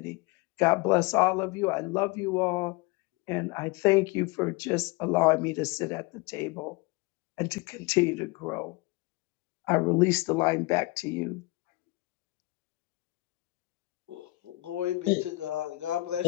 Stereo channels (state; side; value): quieter; right; 22.0 dB